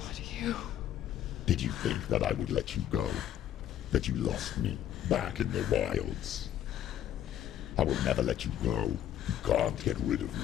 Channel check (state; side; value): quieter; right; 11.0 dB